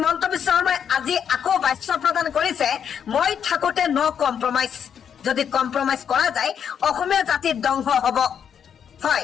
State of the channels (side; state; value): right; quieter; 8.0 dB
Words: বিশ্ব শৰ্মাই আজি আকৌ বাক্য প্ৰদান কৰিছে, মই থাকোঁতে ন কম্প্ৰমাইজ, যদি কম্প্ৰমাইজ কৰা যায় অসমীয়া জাতিৰ ধ্বংস হ'ব।